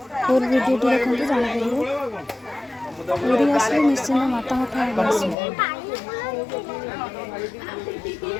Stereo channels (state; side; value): drops out; right; at 5.4 s